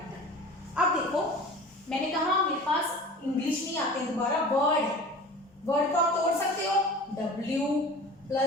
अब देखो, मैंने कहा मेरे पास इंग्लिश नहीं आते हैं, दोबारा वर्ड को आप तोड़ सकते हो, W +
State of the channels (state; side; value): normal; both; correlation 0.38